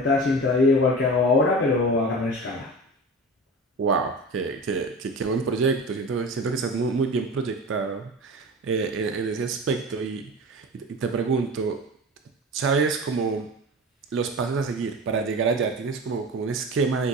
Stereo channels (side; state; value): both; normal; correlation 0.32